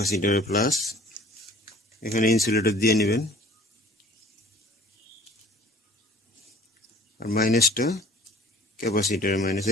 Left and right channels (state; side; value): normal; both; correlation 0.49